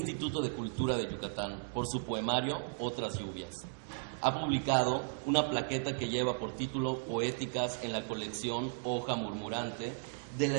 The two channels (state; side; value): silent; left; digital silence